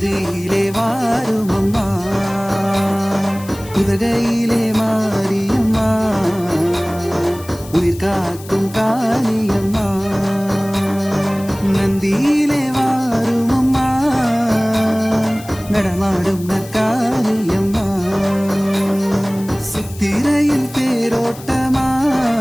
வாரும் அம்மா, உதகையிலே மாரியம்மா உயிர் காக்கும் காளியம்மா, நந்தியிலே வாரும் அம்மா நடமாடும் நற்காளியம்மா, சித்திரையில் தேரோட்டமா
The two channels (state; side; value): noise; left; hiss, 18 dB below the sound